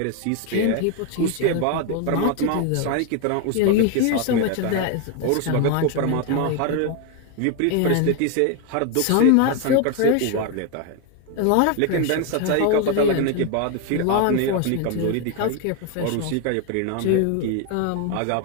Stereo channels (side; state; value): both; different; correlation 0.01